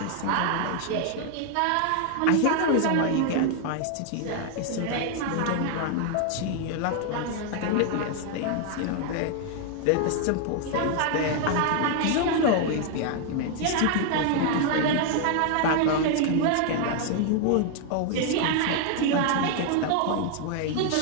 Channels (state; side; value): different; both; correlation 0.00